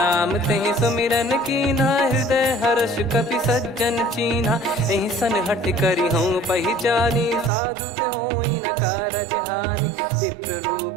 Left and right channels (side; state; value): left; drops out; at 7.5 s